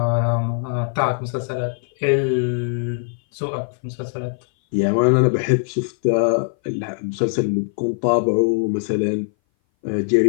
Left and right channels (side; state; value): right; silent; 59 dB below the other